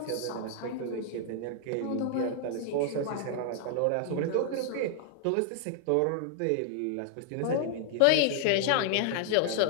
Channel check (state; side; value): different; both; correlation -0.01